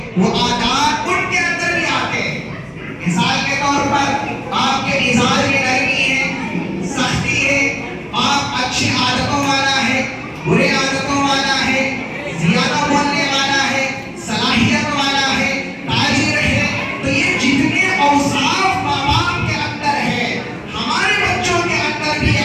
وہ عادات ان کے اندر بھی آتے ہیں. مثال کے طور پر آپ کے مزاج میں نرمی ہے، سختی ہے، آپ اچھی عادتوں والا ہے، برے عادتوں والا ہے، زیادہ بولنے والا ہے، صلاحیت والا ہے، تاجر ہے. تو یہ جتنے اوصاف ماں باپ کے اندر ہے ہمارے بچوں کے اندر بھی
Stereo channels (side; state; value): both; identical; correlation 1.00